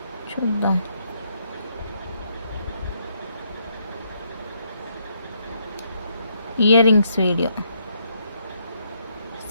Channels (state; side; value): inverted; both; correlation -0.74